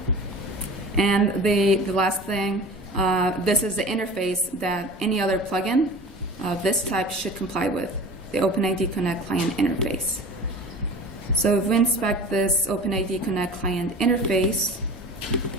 And the last thing, this is the interface that any other plugin of this type should comply with, the OpenID Connect client interface. So if we inspect this OpenID Connect client interface,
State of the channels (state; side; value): normal; both; correlation 0.38